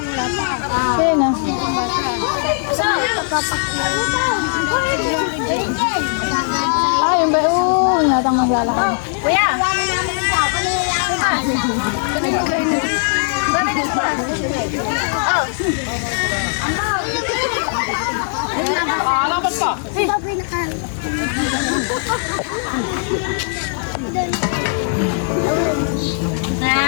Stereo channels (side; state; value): right; silent; digital silence